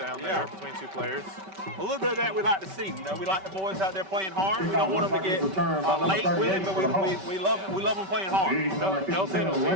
there between two players. A little bit of that we like to see. You know, we like the boys out there playing hard. We don't want them to get late with it, but we love them playing hard. No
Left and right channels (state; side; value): late; left; 5.2 ms